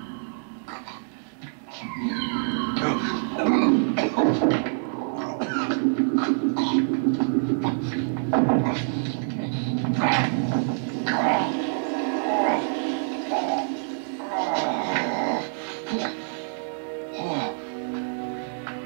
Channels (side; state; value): left; silent; digital silence